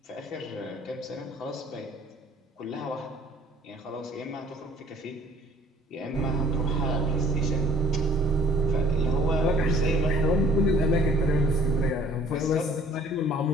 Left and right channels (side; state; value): both; normal; correlation 0.55